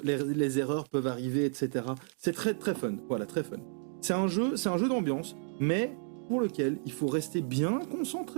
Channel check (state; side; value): silent; left; 57 dB below the other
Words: peuvent arriver, etc. C'est très très fun, voilà, très fun. C'est un jeu d'ambiance, mais pour lequel il faut rester bien